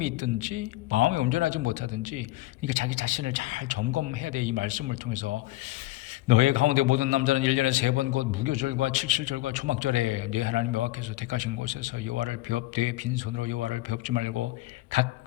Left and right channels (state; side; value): quieter; right; 18.1 dB